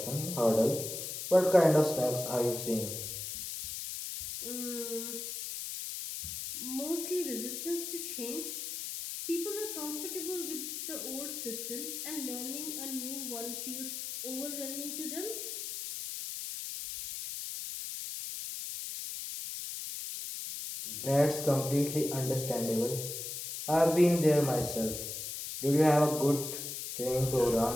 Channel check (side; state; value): left; noise; hiss, 6 dB below the sound